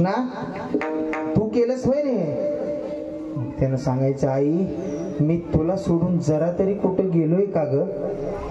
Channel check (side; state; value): both; identical; correlation 1.00